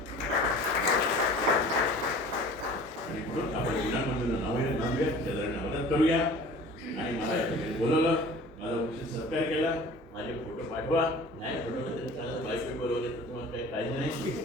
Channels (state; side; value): normal; both; correlation 0.44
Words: आणि म्हणून आपण विनामूल्य मदत करूया. आणि मला या ठिकाणी बोलवलं, माझा उचित सत्कार केला, माझे फोटो पाठवा, नाही फोटो तरी चालत, बायको बोलवले तर तुम्हाला काही काळजी नाही.